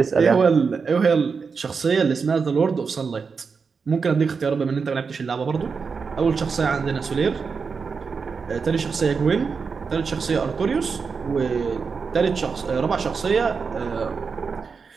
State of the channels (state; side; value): quieter; left; 5.3 dB